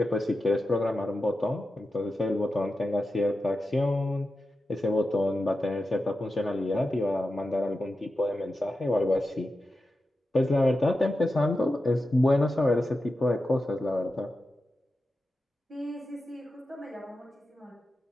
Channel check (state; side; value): normal; both; correlation 0.91